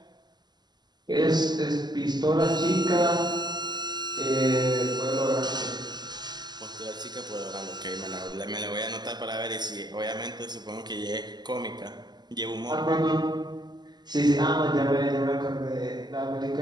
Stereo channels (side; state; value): left; late; 0.21 ms